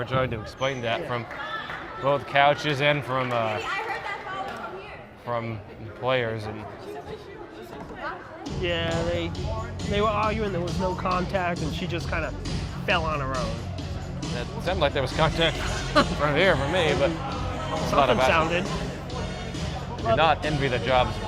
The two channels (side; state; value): both; identical; correlation 1.00